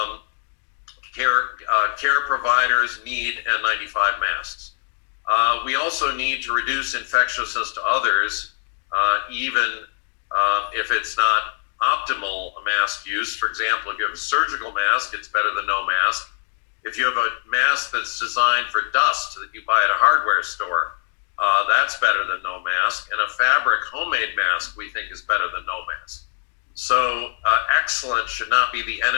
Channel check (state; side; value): silent; right; digital silence